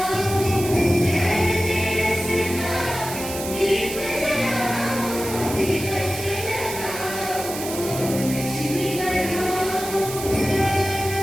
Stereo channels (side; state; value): right; noise; hiss, 9 dB below the sound